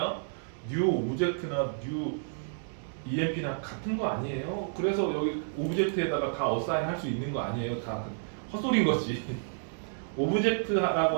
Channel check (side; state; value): left; silent; digital silence